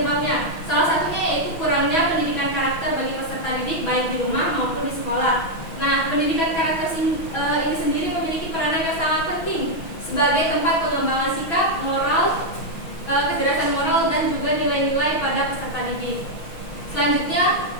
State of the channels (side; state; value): right; late; 6.1 ms